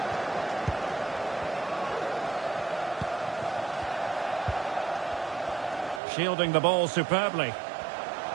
Shielding the ball superbly.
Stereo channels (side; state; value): left; drops out; at 6.0 s